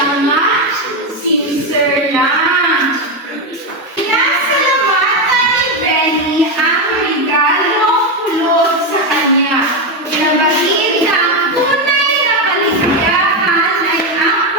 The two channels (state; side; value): normal; both; correlation 0.09